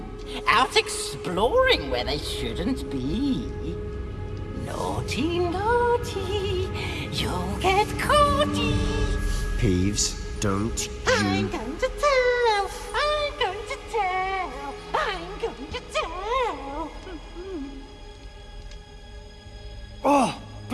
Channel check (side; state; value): both; identical; correlation 1.00